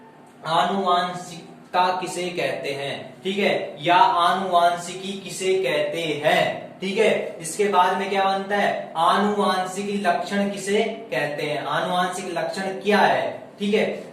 आनुवांशिकता किसे कहते हैं, ठीक है, या आनुवांशिकी किसे कहते हैं। ठीक है, इसके बाद में क्या बनता है, आनुवांशिक लक्षण किसे कहते हैं, आनुवांशिक लक्षण क्या है। ठीक है,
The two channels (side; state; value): both; identical; correlation 1.00